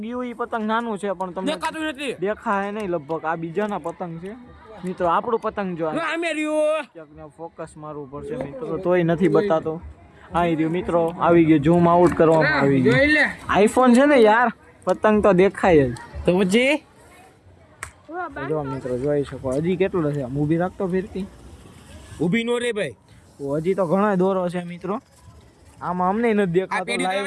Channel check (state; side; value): identical; both; correlation 1.00